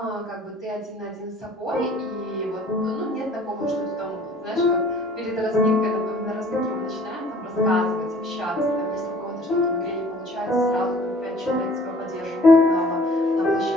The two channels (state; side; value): normal; both; correlation 0.53